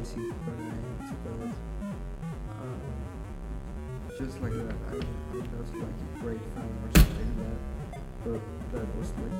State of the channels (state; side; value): identical; both; correlation 1.00